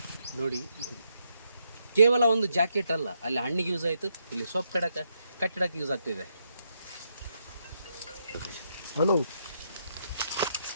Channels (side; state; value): both; inverted; correlation -0.78